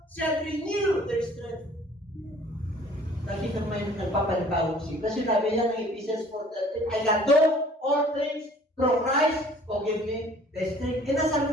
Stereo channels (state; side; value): normal; both; correlation 0.53